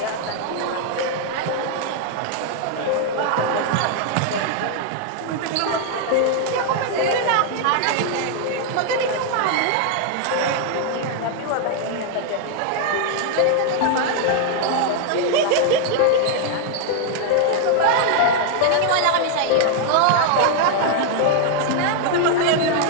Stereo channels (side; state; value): both; different; correlation 0.00